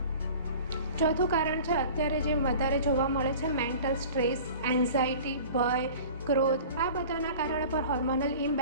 ચોથું કારણ છે અત્યારે જે વધારે જોવા મળે છે મેન્ટલ સ્ટ્રેસ, એન્ઝાયટી, ભય, ક્રોધ. આ બધાના કારણે પણ હોર્મોનલ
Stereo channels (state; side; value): inverted; both; correlation -0.42